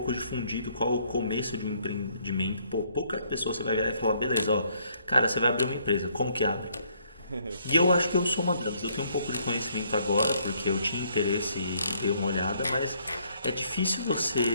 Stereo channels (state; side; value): inverted; both; correlation -0.68